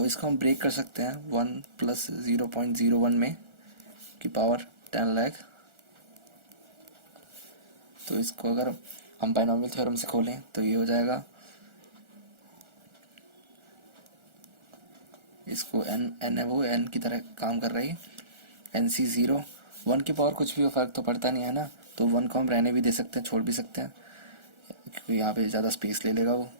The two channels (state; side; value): late; left; 1.4 ms